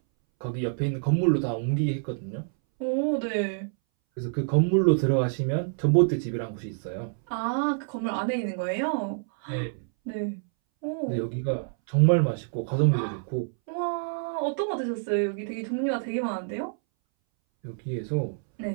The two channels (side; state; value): left; silent; 60 dB below the other